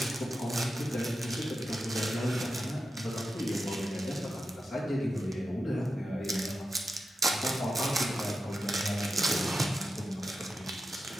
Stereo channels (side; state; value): both; normal; correlation 0.90